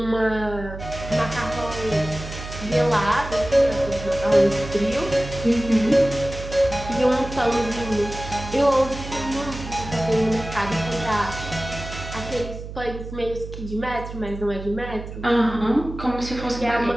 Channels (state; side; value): noise; right; hum, 10 dB below the sound